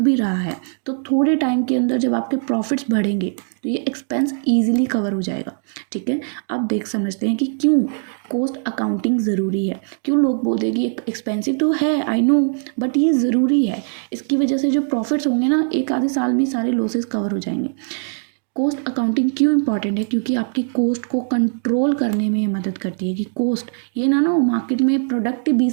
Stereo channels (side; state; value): left; silent; digital silence